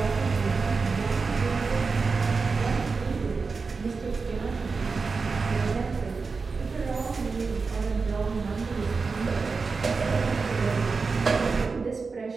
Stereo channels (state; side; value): quieter; left; 4.6 dB